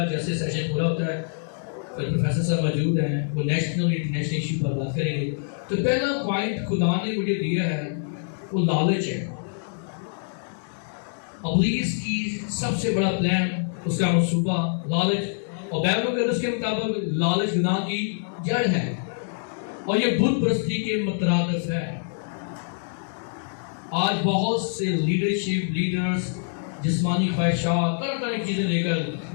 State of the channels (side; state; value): right; silent; digital silence